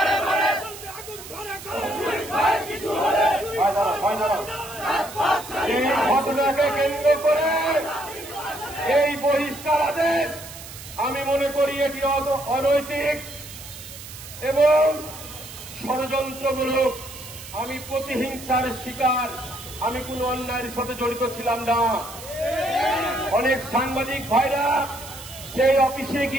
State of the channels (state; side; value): noise; right; hiss, 14 dB below the sound